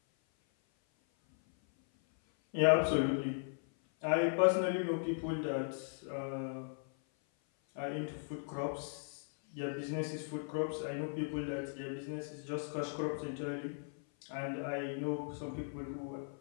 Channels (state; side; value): silent; right; 53 dB below the other